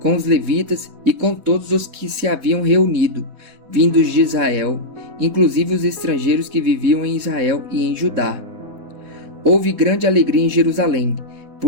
os levitas e com todos os que se haviam reunido, vindos de Israel, inclusive os estrangeiros que viviam em Israel e em Judá. Houve grande alegria em Jerusalém,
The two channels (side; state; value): left; late; 4.1 ms